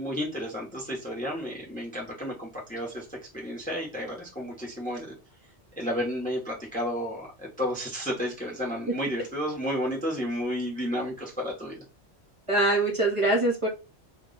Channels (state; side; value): normal; both; correlation 0.41